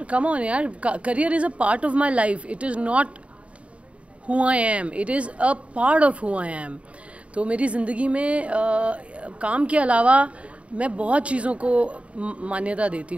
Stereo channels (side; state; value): left; late; 0.063 ms